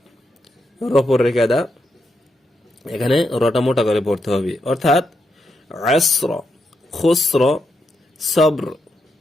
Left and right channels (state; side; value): normal; both; correlation 0.83